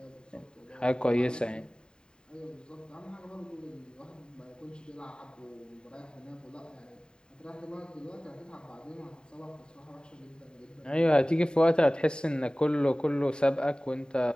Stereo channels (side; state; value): right; late; 0.048 ms